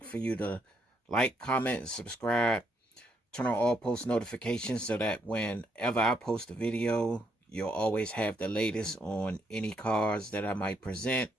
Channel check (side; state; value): both; normal; correlation 0.75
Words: for you to like, comment, and subscribe. Turn on all post notifications so that whenever I post a video, you'll always have the latest on any cars that I might present